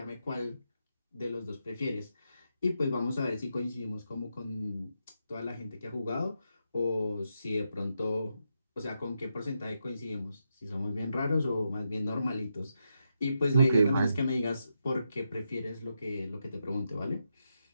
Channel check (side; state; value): both; inverted; correlation -0.84